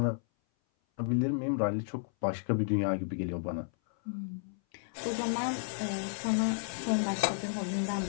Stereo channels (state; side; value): silent; right; 56 dB below the other